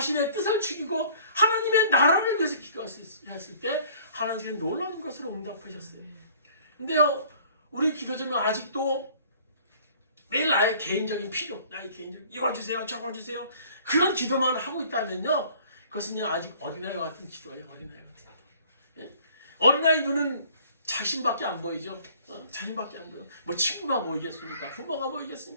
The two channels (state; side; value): inverted; both; correlation -0.53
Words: 뜻을 죽이고 하나님의 나라를 위해서 기도했을 때 하나님은 놀라운 것으로 응답하셨어요. 근데요, 우리 기도 제목 아직도 매일 나의 개인적인 필요, 나의 개인적인 이거 주세요, 저거 주세요. 그런 기도만 하고 있다면요, 그것은요 아직 어린아이와 같은 기도예요. 어린아이 같은 기도. 예? 어린아이 눈은 자신밖에 안 보이죠. 자신밖에 안 보여. 뭐 친구가 보이겠습니까? 부모가